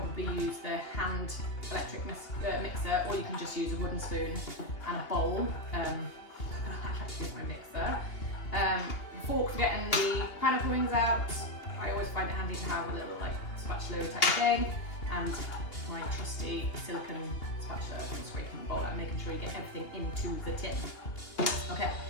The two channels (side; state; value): right; late; 2.8 ms